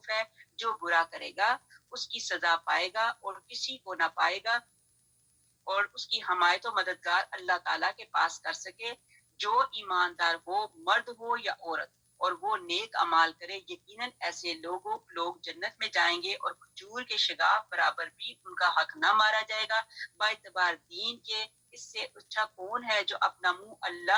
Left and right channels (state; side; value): identical; both; correlation 1.00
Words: ہے۔ جو برا کرے گا اس کی سزا پائے گا اور کسی کو نہ پائے گا اور اس کی حمایت و مددگار اللہ تعالیٰ کے پاس کر سکے۔ جو ایماندار ہو، مرد ہو یا عورت، اور وہ نیک اعمال کرے، یقیناً ایسے لوگ جنت میں جائیں گے اور کھجور کے شگاف برابر بھی ان کا حق نہ مارا جائے گا۔ با اعتبار دین کے اس سے اچھا کون ہے جو اپنا منہ